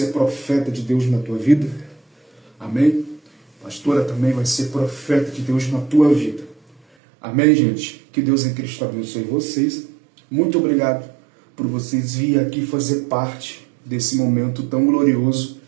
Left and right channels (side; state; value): left; drops out; at 6.8 s